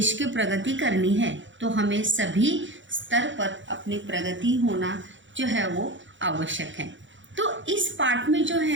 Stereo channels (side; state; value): left; late; 0.55 ms